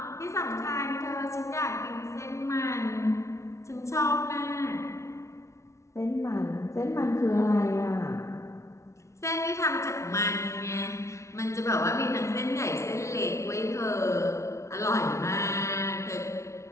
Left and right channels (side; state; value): right; late; 0.14 ms